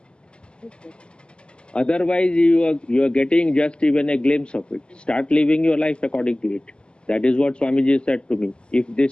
Otherwise, you are getting just even a glimpse of it. Start living your life according to it. That is what Swamiji said to me. If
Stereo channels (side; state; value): right; late; 0.050 ms